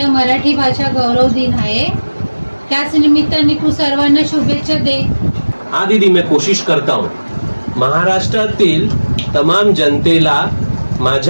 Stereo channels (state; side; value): inverted; both; correlation -1.00